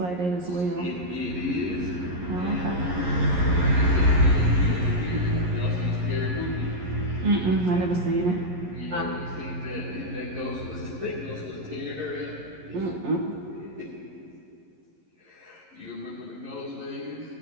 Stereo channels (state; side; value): late; left; 11 ms